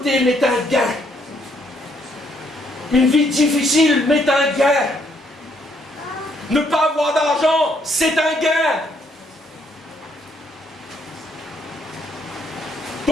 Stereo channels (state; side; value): normal; both; correlation 0.70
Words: m'est un gain. Une vie difficile m'est un gain. Ne pas avoir d'argent, c'est un gain.